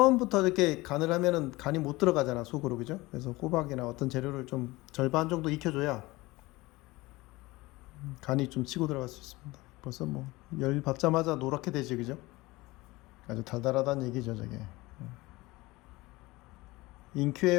이렇게 간을 하면은 간이 못 들어가잖아, 속으로, 그죠? 그래서 호박이나 어떤 재료를 좀 절반 정도 익혀줘야 간이 좀 치고 들어갈 수 있습니다. 벌써 뭐 열 받자마자 노랗게 되지, 그죠? 아주 달달하다는 얘기죠, 저게.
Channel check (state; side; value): quieter; right; 20.9 dB